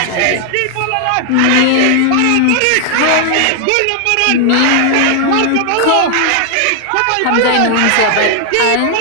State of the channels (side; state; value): both; different; correlation 0.00